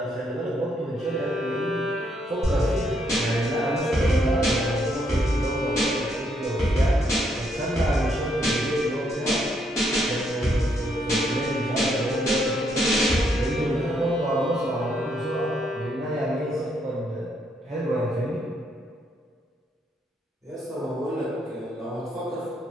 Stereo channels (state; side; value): normal; both; correlation 0.74